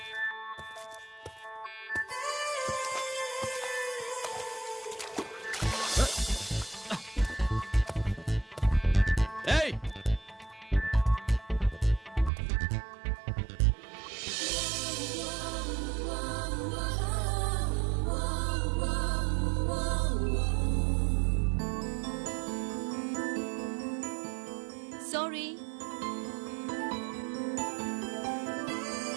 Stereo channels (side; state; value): left; drops out; at 12.3 s